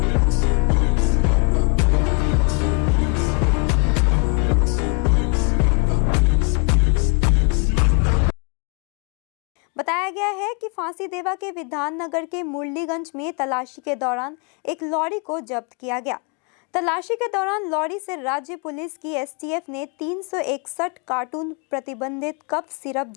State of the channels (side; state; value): right; quieter; 34.7 dB